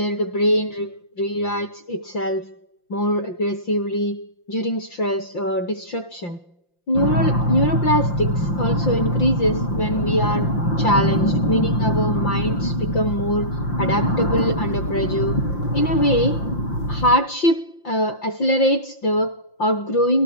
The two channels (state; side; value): late; right; 5.8 ms